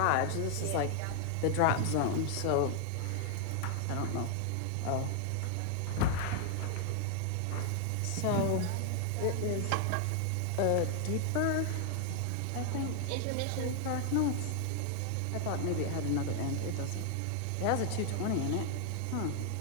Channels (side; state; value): both; different; correlation 0.00